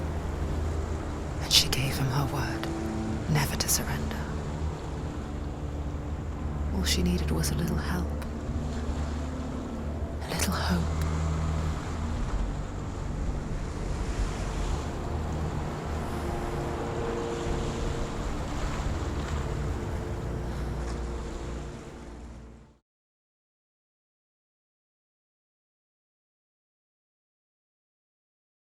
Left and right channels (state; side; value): identical; both; correlation 1.00